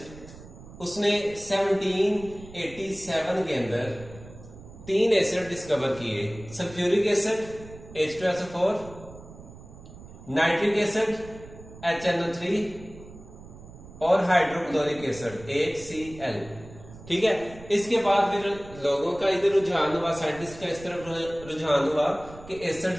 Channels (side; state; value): right; noise; rumble, 17 dB below the sound